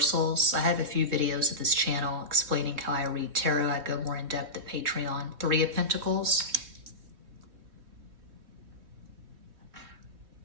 I have a few videos of this channel explaining how I read tarot. I go more in depth at Patreon. 3 of Pentacles.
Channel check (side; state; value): left; late; 3.6 ms